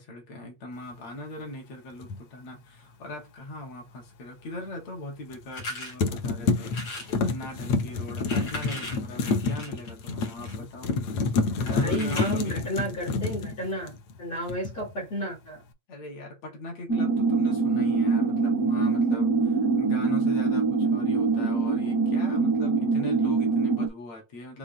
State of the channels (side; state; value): right; late; 8.5 ms